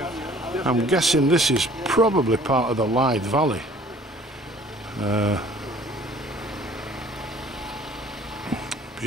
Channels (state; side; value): normal; both; correlation 0.53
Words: I'm guessing this is probably part of the Lyde Valley.